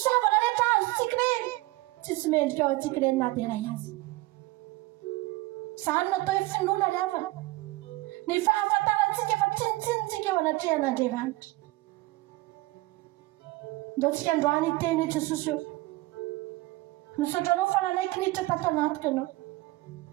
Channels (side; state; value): left; quieter; 20.2 dB